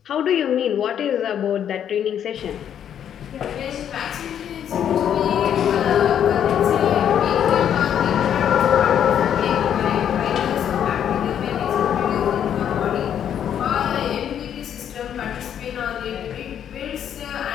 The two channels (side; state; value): right; quieter; 9.3 dB